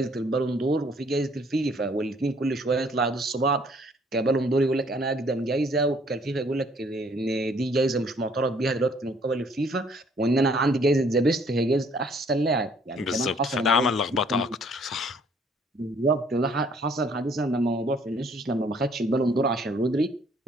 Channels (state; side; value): normal; both; correlation 0.61